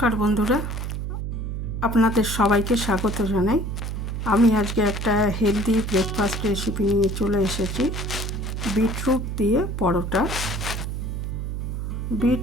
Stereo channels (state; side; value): noise; right; hum, 4 dB below the sound